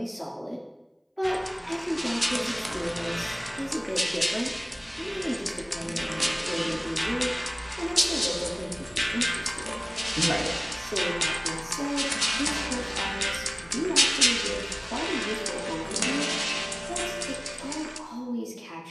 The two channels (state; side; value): identical; both; correlation 1.00